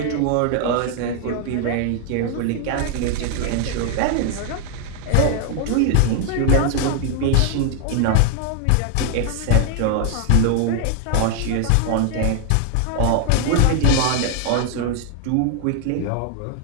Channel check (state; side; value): different; both; correlation 0.00